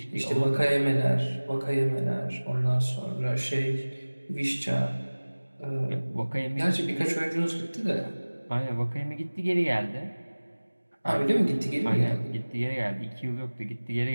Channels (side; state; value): both; inverted; correlation -1.00